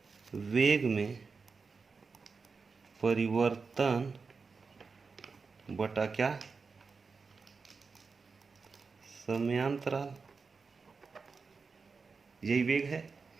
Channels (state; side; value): quieter; left; 4.8 dB